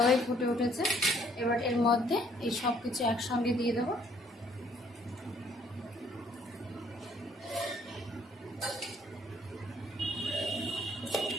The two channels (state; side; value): normal; both; correlation 0.63